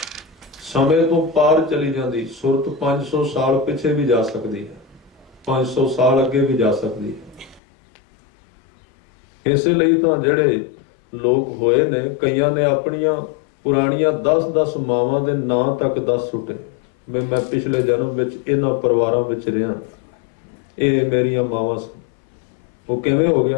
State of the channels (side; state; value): right; drops out; at 7.6 s